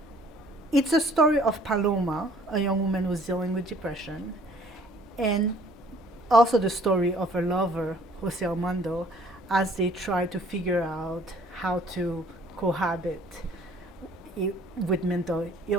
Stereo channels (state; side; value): normal; both; correlation 0.57